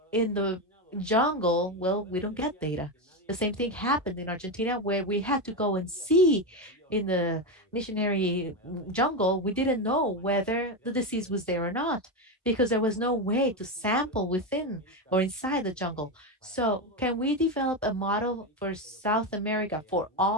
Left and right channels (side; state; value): both; normal; correlation 0.12